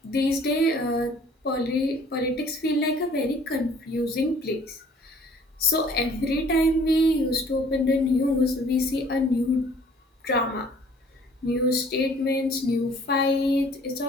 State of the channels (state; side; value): normal; both; correlation 0.55